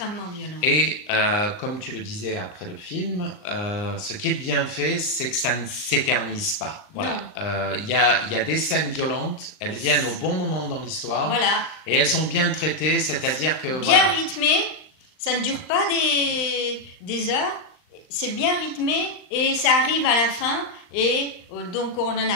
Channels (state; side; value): late; right; 39 ms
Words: violent. Et comme tu le disais après le film, ce qui est bien fait, c'est que ça ne s'éternise pas. Voilà, il y a des scènes violentes, elles viennent au bon moment dans l'histoire, Voilà. et elles sont bien traitées, c'est-à-dire que Bien voilà. rythmé, ça ne dure pas des heures, c'est bien rythmé et ça arrive à la fin et donc on en